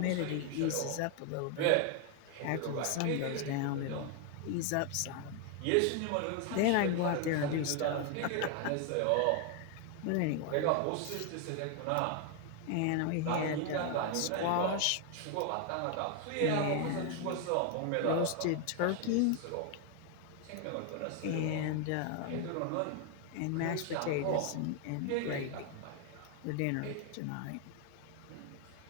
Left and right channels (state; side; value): different; both; correlation 0.01